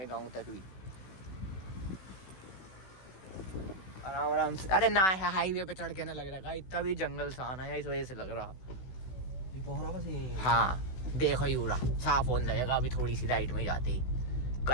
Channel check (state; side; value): late; right; 16 ms